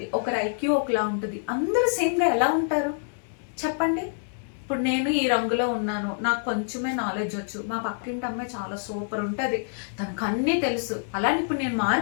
ఒకరి ఐక్యూ ఒకలా ఉంటుంది. అందరూ సేమ్గా ఎలా ఉంటారు చెప్పండి? ఇప్పుడు నేను ఈ రంగులో ఉన్నాను, నాకు కొంచెమే నాలెడ్జ్ వచ్చు, మా పక్కింటి అమ్మాయి చాలా సూపర్ ఉంటుంది, తనకు అన్నీ తెలుసు. అలానే ఇప్పుడు నేను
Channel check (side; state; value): right; silent; digital silence